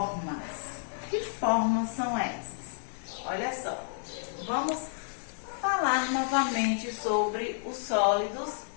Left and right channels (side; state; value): right; silent; 57 dB below the other